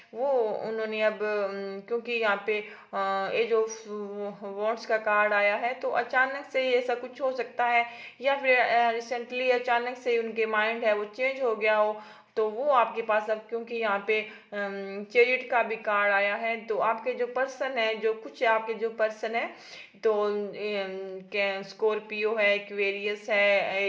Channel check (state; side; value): identical; both; correlation 1.00